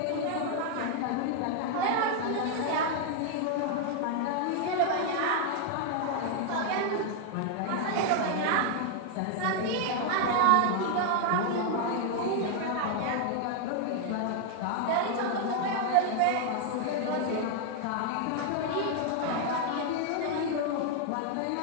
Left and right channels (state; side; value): different; both; correlation 0.00